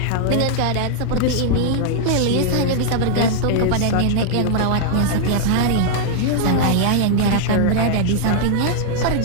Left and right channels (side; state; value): both; different; correlation -0.01